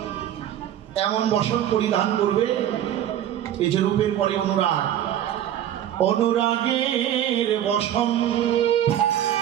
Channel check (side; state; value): left; quieter; 11.2 dB